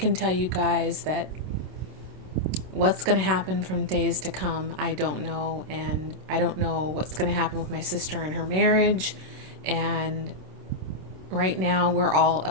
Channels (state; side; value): late; left; 27 ms